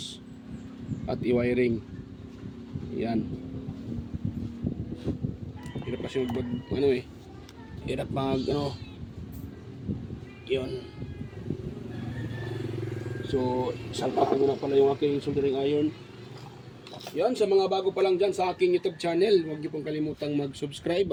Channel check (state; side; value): identical; both; correlation 1.00